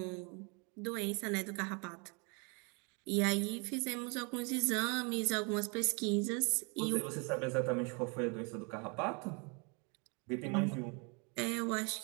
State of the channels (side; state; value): left; quieter; 33.6 dB